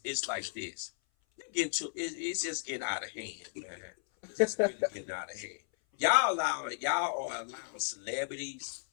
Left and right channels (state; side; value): silent; right; 55 dB below the other